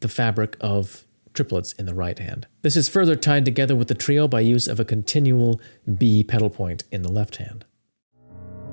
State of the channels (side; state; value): both; inverted; correlation -1.00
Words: the fabric of triplets in the right hand. This is further tied together with the trio by use of a continual B pedal point in the left hand.